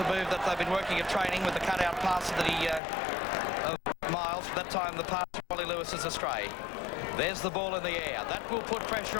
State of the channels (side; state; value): right; drops out; at 2.8 s